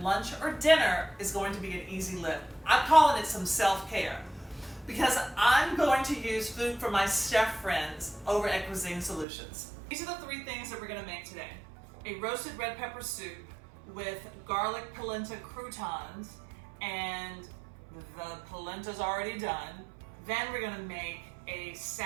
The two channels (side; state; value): left; drops out; at 9.2 s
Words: or dinner is going to be an easy lift. I'm calling it some self-care because I'm going to use food for my chef friends over at Cuisine Solutions. These are the three things that we're going to make today. A roasted red pepper soup with garlic polenta croutons, and the polenta's already done. Then we're going to make a